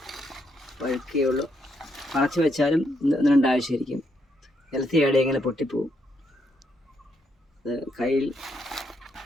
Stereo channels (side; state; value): both; normal; correlation 0.77